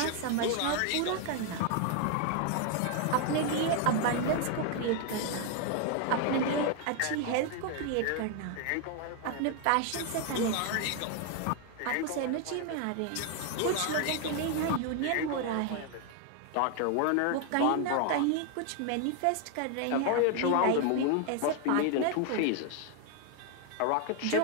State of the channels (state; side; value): different; both; correlation 0.01